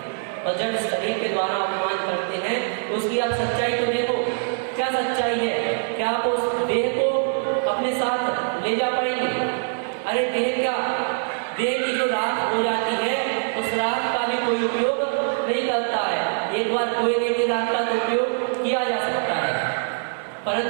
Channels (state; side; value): silent; left; 55 dB below the other